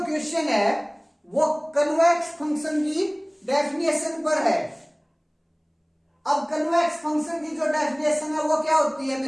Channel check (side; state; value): both; identical; correlation 1.00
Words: question है वो कन्वेक्स फंक्शन की डेफिनेशन पर है। अब कन्वेक्स फंक्शन की जो डेफिनेशन है वो क्या होती है